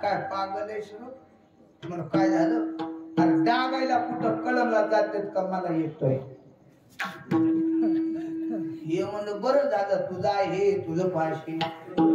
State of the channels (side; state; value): both; identical; correlation 1.00